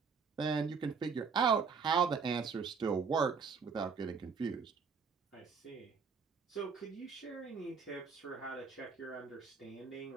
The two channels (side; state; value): left; quieter; 5.6 dB